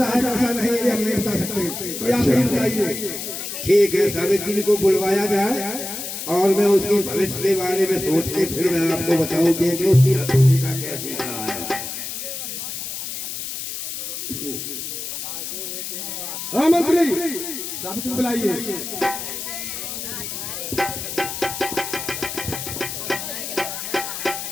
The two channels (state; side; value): noise; left; hiss, 6 dB below the sound